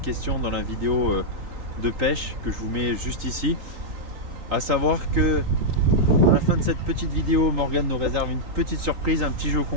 dans la vidéo de pêche que je vous mets juste ici. À savoir que à la fin de cette petite vidéo, Morgane nous réserve une petite surprise, un petit jeu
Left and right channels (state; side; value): late; left; 3.8 ms